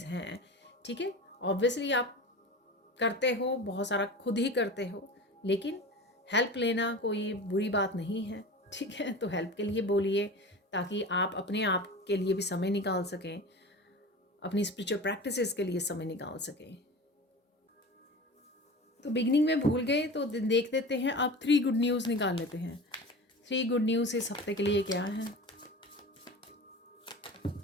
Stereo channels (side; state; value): both; normal; correlation 0.33